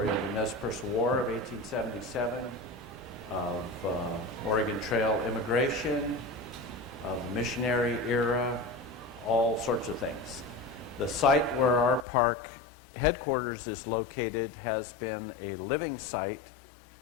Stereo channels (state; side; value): drops out; right; at 12.1 s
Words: of the Nez Perce War of 1877, of Oregon Trail immigration, of the missionary era, all sorts of things. The site where our park headquarters is located has been a living site